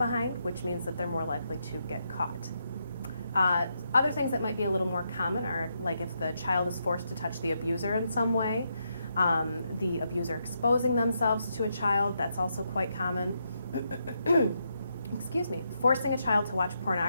which means that they're more likely to get caught. Other things that might be a little more common are like if the child is forced to touch the abuser in some way, the abuser exposing themselves to a child, that's also quite common. Excuse me. Forcing a child to watch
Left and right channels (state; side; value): inverted; both; correlation -0.81